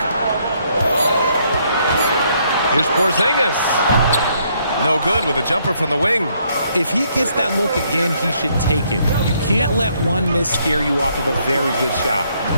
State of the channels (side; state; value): both; inverted; correlation -0.70